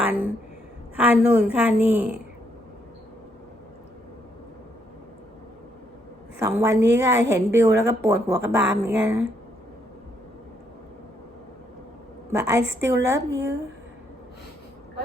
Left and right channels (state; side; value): normal; both; correlation 0.74